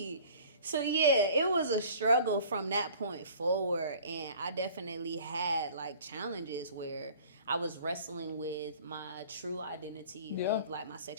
So yeah, it was a struggle from that point forward, and I definitely had like challenges where I was wrestling with my true identity of like my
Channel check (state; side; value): inverted; both; correlation -0.48